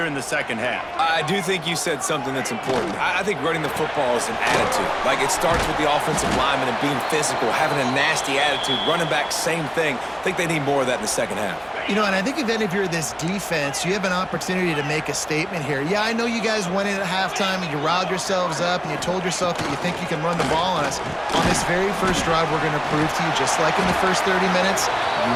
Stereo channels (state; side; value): identical; both; correlation 1.00